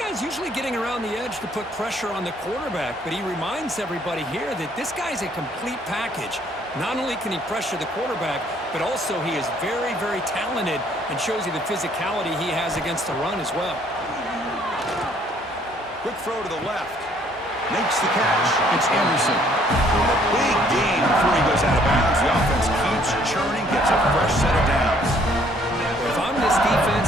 usually getting around the edge to put pressure on the quarterback, but he reminds everybody here that this guy's a complete package. Not only can he pressure the quarterback, but also he is very, very talented and shows you the physicality he has against the run as well. Quick throw to the left. Makes the catch. It's Anderson. A big gain before he goes out of bounds. The offense keeps churning, gets a fresh set of downs. If I'm this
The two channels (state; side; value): normal; both; correlation 0.63